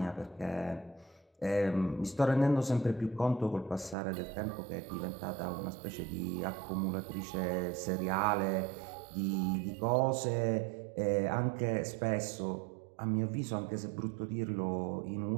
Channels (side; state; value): left; drops out; at 4.0 s